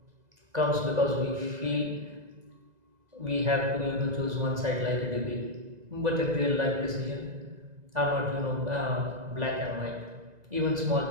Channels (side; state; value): left; late; 2.0 ms